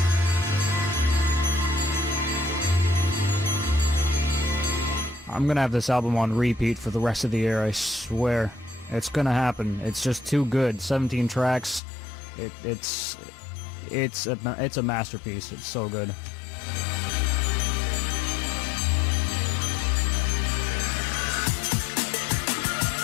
I'm gonna have this album on repeat for the rest of the year, I swear. It's gonna happen. It's just too good. 17 tracks. It's a masterpiece. It's so good.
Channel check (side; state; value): right; drops out; at 11.8 s